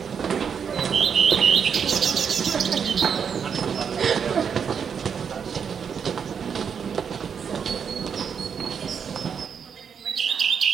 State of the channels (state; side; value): quieter; left; 7.0 dB